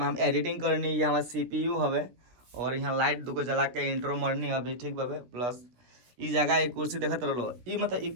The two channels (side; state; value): left; late; 16 ms